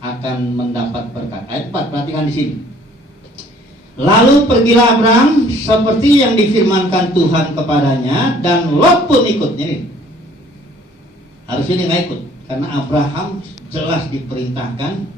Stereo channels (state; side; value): normal; both; correlation 0.57